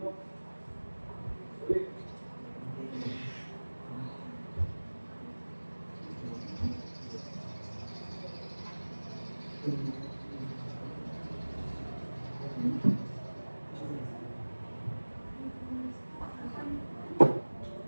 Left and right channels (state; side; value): inverted; both; correlation -1.00